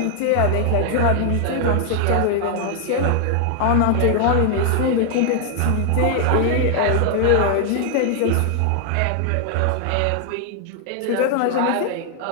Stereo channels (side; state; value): both; different; correlation 0.00